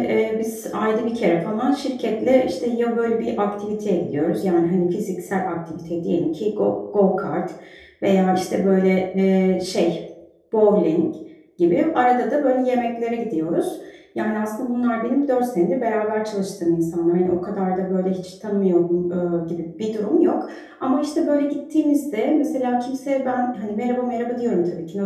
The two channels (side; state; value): both; identical; correlation 1.00